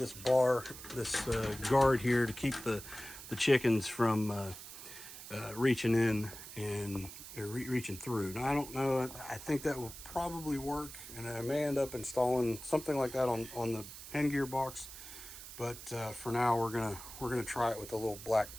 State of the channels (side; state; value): right; noise; hiss, 13 dB below the sound